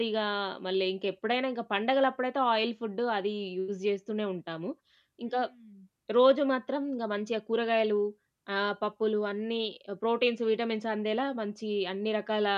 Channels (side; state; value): both; identical; correlation 1.00